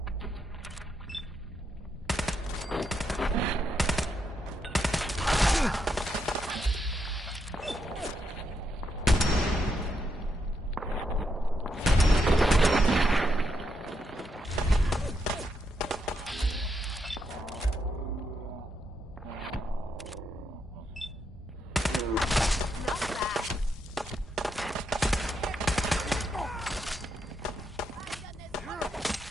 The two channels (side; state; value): both; normal; correlation 0.80